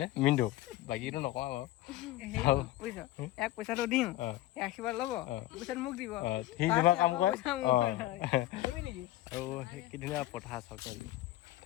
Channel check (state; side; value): quieter; right; 15.9 dB